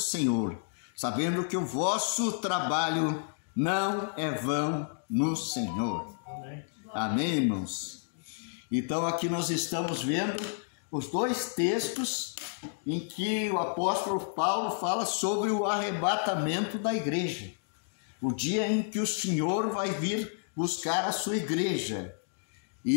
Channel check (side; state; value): right; silent; digital silence